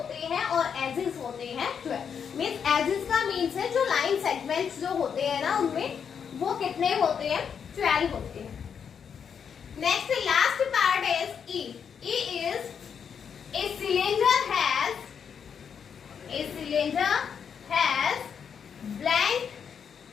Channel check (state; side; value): quieter; right; 7.2 dB